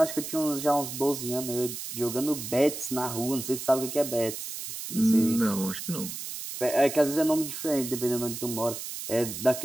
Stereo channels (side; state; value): right; noise; hiss, 7 dB below the sound